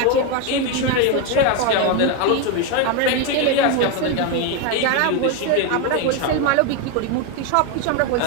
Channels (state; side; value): different; both; correlation 0.02